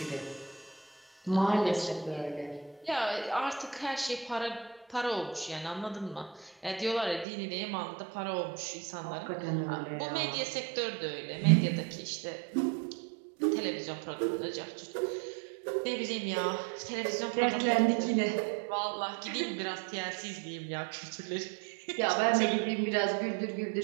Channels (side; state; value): left; drops out; at 7.2 s